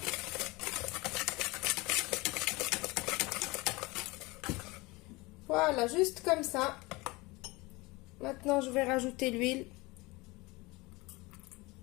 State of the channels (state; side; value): quieter; right; 23.4 dB